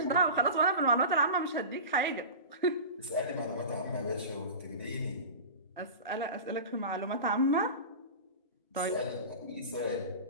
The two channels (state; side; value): inverted; both; correlation -0.31